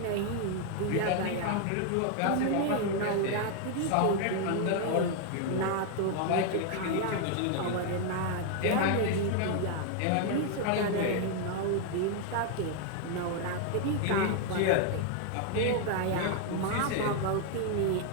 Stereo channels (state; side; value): different; both; correlation 0.01